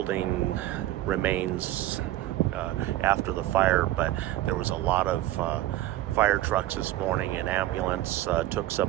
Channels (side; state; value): left; quieter; 15.1 dB